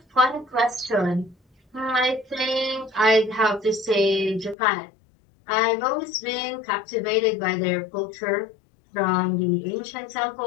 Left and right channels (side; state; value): right; drops out; at 4.5 s